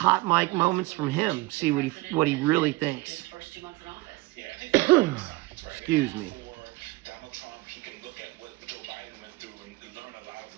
mic moments from him, see what he really thinks. Excuse me. Donald Trump, he can look at what Joe Biden went through and learn a lot of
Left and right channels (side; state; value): left; quieter; 21.6 dB